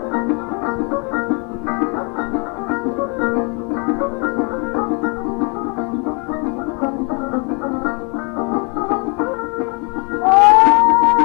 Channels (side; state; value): right; quieter; 34.1 dB